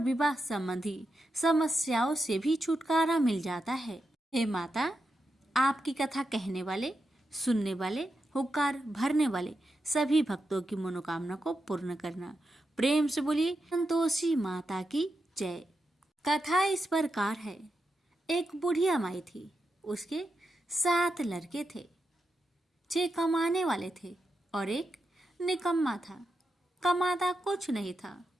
संबंधी समस्याओं से भी छुटकारा मिल जाता है। हे माता, आपकी कथा कहने वाले, सुनने वाले, हुक्कार भरने वाले सभी भक्तों की मनोकामना को पूर्ण करना। प्रेम से बोलिए संतोषी माता की जय। कथा इस प्रकार है। एक बुढ़िया माई थी, उसके 7 लड़के थे। 6 कमाने वाले थे और एक निकम्मा था, कमाता कुछ नहीं था।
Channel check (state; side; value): normal; both; correlation 0.87